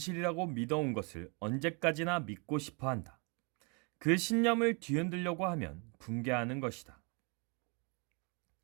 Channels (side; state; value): left; quieter; 33.6 dB